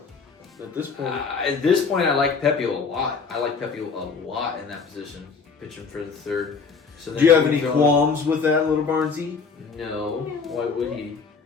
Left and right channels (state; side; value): quieter; right; 5.2 dB